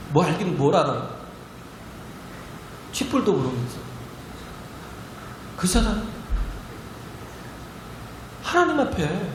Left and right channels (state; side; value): identical; both; correlation 1.00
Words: 뭐 알긴 뭘 알아요? 쥐뿔도 모르면서. 그잖아요. 하나님 앞에